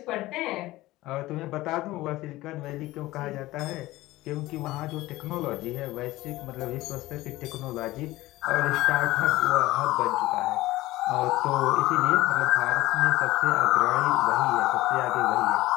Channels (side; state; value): right; quieter; 17.9 dB